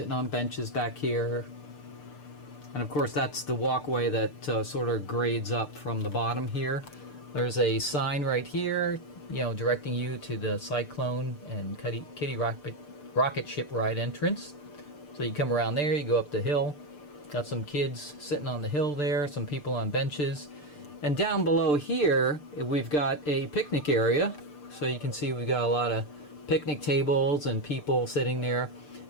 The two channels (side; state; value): right; late; 6.7 ms